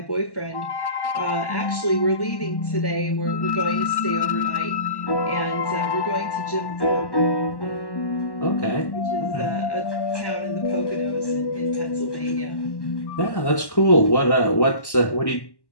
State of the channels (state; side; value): late; right; 1.1 ms